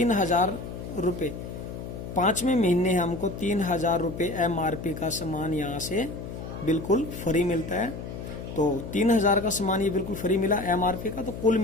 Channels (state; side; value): noise; left; hum, 9 dB below the sound